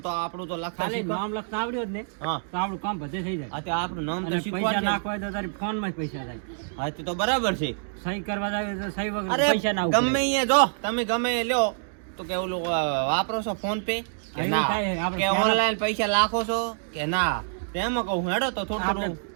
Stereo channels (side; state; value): left; silent; digital silence